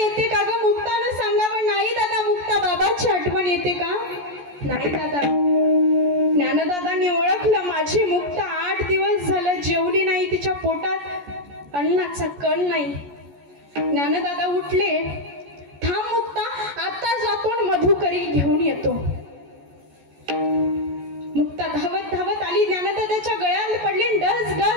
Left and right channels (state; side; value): late; left; 14 ms